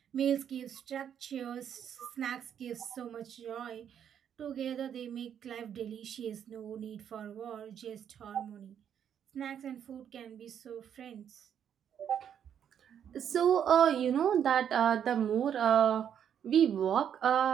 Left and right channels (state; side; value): quieter; left; 8.9 dB